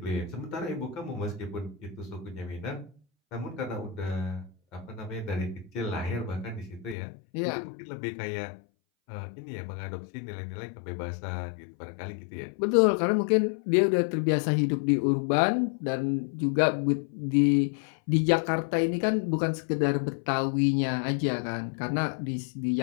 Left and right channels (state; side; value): drops out; right; at 7.0 s